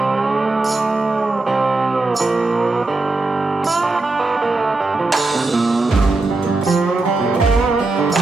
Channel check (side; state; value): left; quieter; 3.2 dB